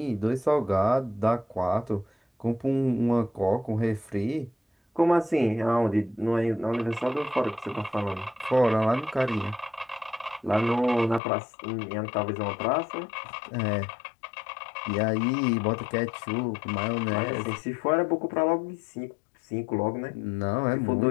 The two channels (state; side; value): drops out; right; at 11.2 s